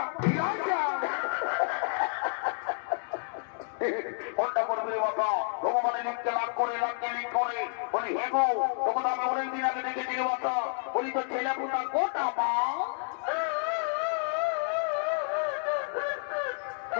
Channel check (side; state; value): right; silent; digital silence